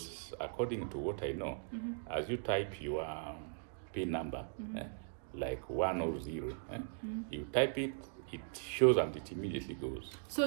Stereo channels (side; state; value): left; silent; digital silence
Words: according to what I know, as you type your PIN number, like 1 or 0, you type it, it shows and it immediately goes. So